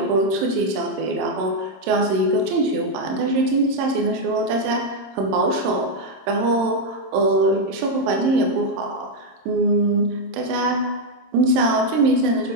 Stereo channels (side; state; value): left; late; 26 ms